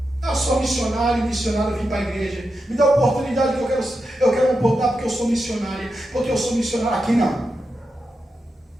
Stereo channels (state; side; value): normal; both; correlation 0.88